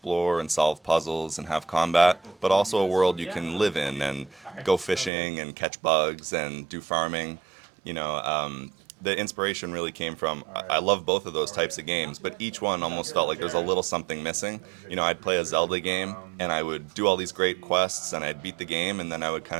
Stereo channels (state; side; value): drops out; left; at 5.1 s